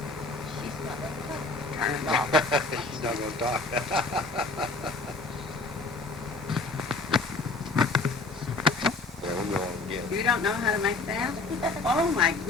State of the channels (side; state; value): right; quieter; 3.4 dB